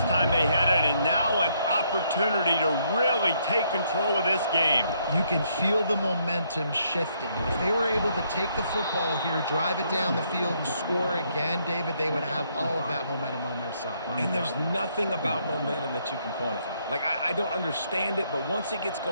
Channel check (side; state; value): both; inverted; correlation -0.71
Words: time they had it, and now an opportunity to really take control of this game. You can feel the momentum shifting. If they were able to take the football here, drive it down the field, and score again, David, they would have all of that momentum on their side. And there's nothing about momentum that you can quantify. Like, I don't understand it, but once it gets